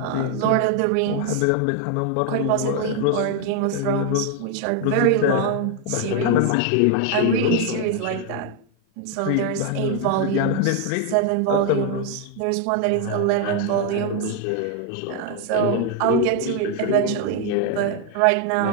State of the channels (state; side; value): different; both; correlation 0.01